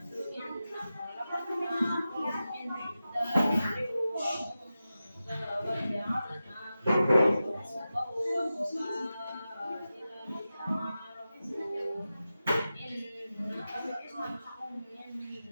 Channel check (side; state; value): both; inverted; correlation -0.93